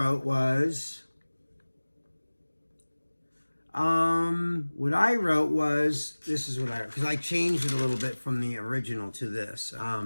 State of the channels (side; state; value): both; inverted; correlation -1.00